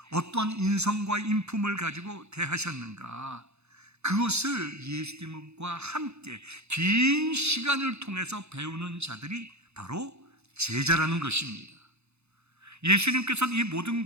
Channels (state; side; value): late; left; 0.81 ms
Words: 어떤 인성과 인품을 가지고 대하셨는가, 그것을 예수님과 함께 긴 시간을 통해서 배우는 자들이 바로 제자라는 것입니다. 예수님께서는 이 모든